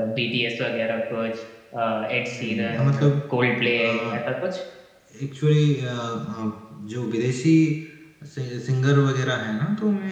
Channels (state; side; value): identical; both; correlation 1.00